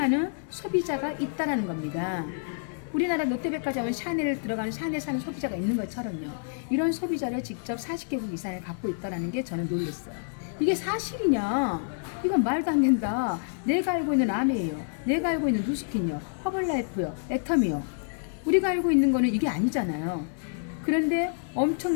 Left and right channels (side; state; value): right; silent; digital silence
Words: 소비자가 있다라는 겁니다. 우리나라 롯데백화점은 샤넬을 들어가는 샤넬 사는 소비자가 있는 것처럼요. 이런 소비자를 직접 40개국 이상을 갖고 있다는 게 저는 놀랐어요. 이게 사실이냐? 이건 말도 안 된다. 내가 알고 있는 아메예요. 내가 알고 있는 누스킨요. 허벌라이프요. 애텀이요. 우리가 알고 있는 거는 이게 아니잖아요. 그런데